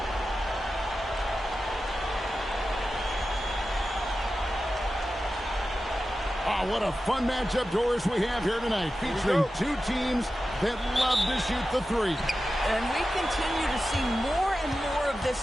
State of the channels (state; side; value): normal; both; correlation 0.93